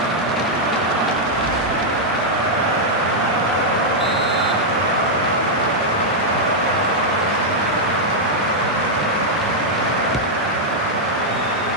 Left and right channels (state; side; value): normal; both; correlation -0.04